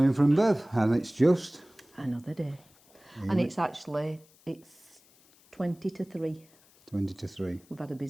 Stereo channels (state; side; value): noise; left; hiss, 29 dB below the sound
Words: from Bev. And it's just Another day. And it's 20 to 3. 20 to 3. We've had a